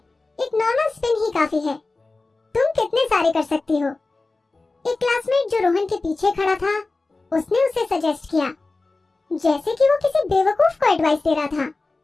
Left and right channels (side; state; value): right; quieter; 3.5 dB